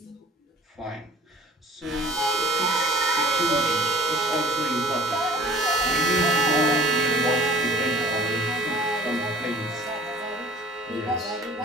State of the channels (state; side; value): normal; both; correlation 0.49